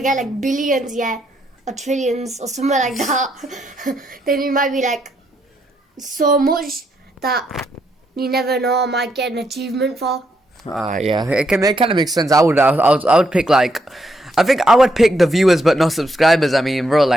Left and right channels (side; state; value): both; normal; correlation 0.77